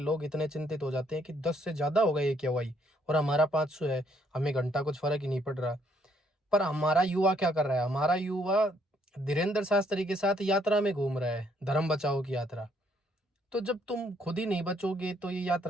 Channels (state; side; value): normal; both; correlation 0.69